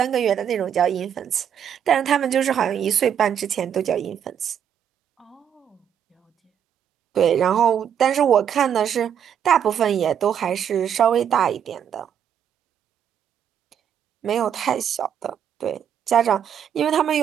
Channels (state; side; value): quieter; left; 8.7 dB